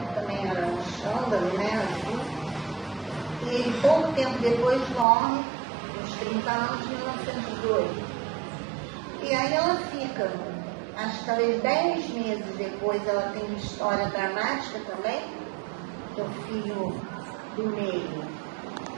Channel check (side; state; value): left; drops out; at 5.1 s